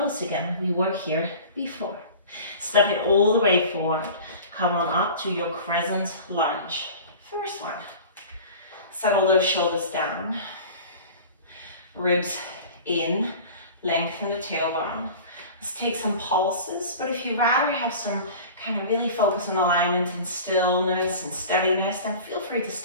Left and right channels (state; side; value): inverted; both; correlation -0.39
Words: again. We were here before. Step it all the way forward. Come on up to your crescent lunge. First one. Settle those shoulders down. Ribs in. Lengthen the tailbone. Let's take some pulses. But if you rather have some kind of really focus on alignment and stillness and steadiness, then feel free to